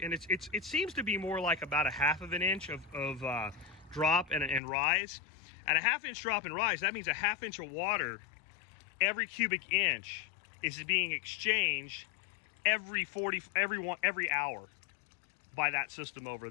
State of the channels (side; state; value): right; drops out; at 4.6 s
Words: and it seems to be more like about a 1/2 inch of drop and rise. At a 1/2 inch drop and rise, that means a 1/2 inch of water every cubic inch is being exchanged every hour by that system over